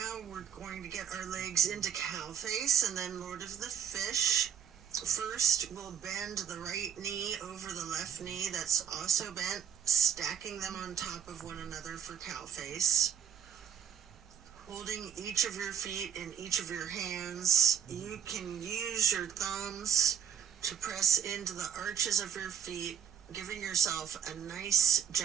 we're going to get our legs into cow face and then Lord of the Fish. First, we'll bend the right knee over the left knee that's also bent, stacking them on top of one another for cow face. Holding each of your feet in each of your hands, you can use your thumbs to press into the arches of your feet, giving yourself a nice,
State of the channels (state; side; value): quieter; left; 8.3 dB